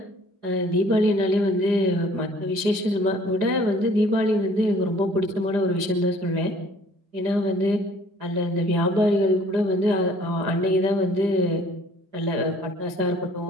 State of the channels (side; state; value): left; late; 4.9 ms